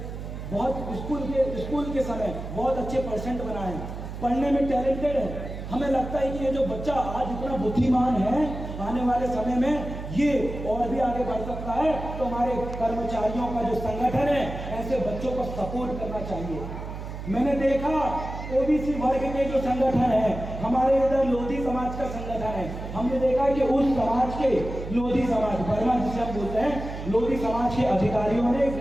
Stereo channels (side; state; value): right; noise; hum, 8 dB below the sound